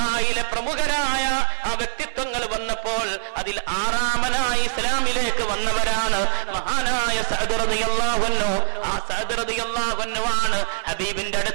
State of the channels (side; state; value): left; silent; 61 dB below the other